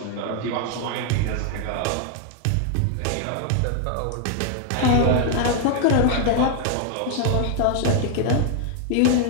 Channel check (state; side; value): different; both; correlation 0.00